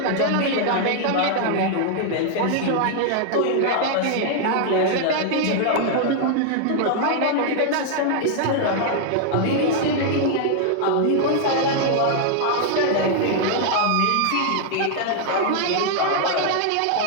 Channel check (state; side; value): different; both; correlation 0.00